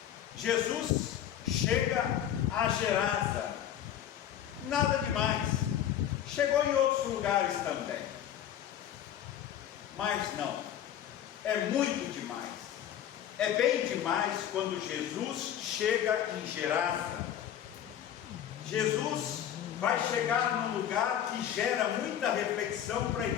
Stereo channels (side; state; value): right; quieter; 10.5 dB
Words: Jesus chega a Gerasa, nada demais, chegou em outros lugares também, mas não, é muito demais, é bem demais quando Jesus chega em Gerasa. Jesus vai chegar num lugar que gera muita reflexão para a